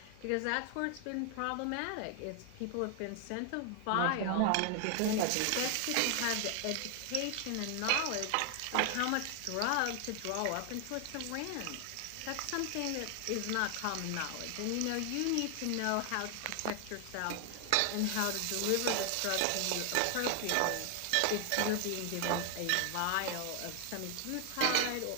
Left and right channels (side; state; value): both; different; correlation 0.00